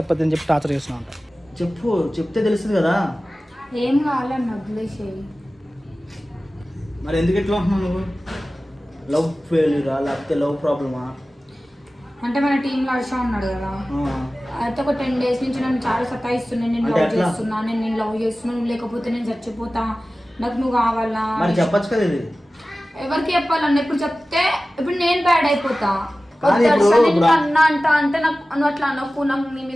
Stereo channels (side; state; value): both; normal; correlation 0.96